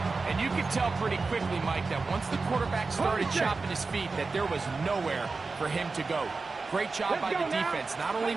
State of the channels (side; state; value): left; quieter; 4.1 dB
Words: And you could tell pretty quickly, Mike, that once the quarterback started chopping his feet, that there was nowhere for him to go. Great job by the defense, not only